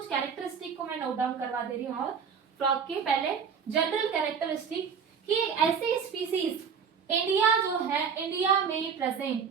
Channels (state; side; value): quieter; left; 6.6 dB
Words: कैरेक्टरिस्टिक को मैं नोट डाउन करवा दे रही हूँ। और फ्रॉग के पहले जनरल कैरेक्टरिस्टिक कि ऐसी स्पीसीज इंडिया जो है, इंडिया में present